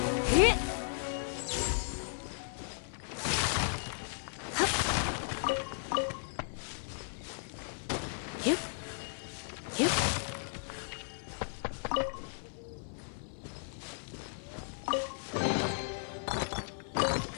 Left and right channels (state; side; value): silent; right; 54 dB below the other